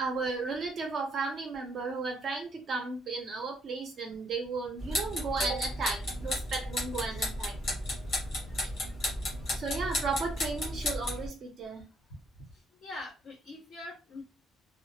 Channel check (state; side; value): normal; both; correlation 0.70